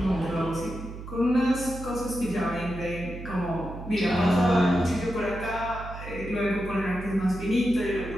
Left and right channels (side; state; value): right; noise; hum, 11 dB below the sound